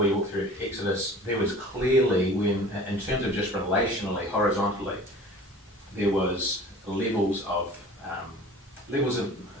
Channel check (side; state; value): both; normal; correlation 0.43